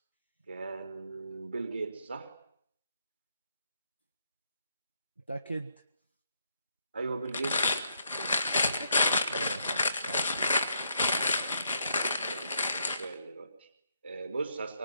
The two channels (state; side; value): inverted; both; correlation -0.75